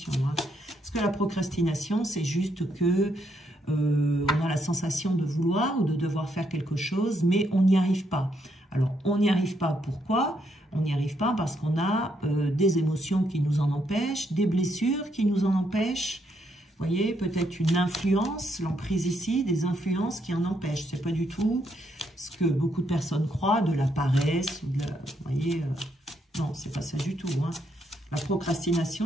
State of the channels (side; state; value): both; normal; correlation 0.76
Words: Hein. Parce que la procrastination, c'est juste que on a la sensation de vouloir ou de devoir faire quelque chose, mais on n'y arrive pas. Alors, on n'y arrive pas. Pourquoi? On n'y arrive pas parce qu'on a des émotions qui nous en empêchent, des blessures qui nous en empêchent. Vous voyez, peut-être une influence, l'emprise ici, des influences qui en empêchent. Ce n'est pas du tout ce que beaucoup de personnes croient, de la paresse, ou de la, vous voyez, non, c'est pas ça du tout. Hein. La